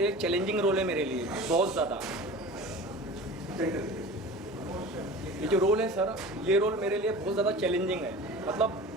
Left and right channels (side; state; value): both; normal; correlation 0.37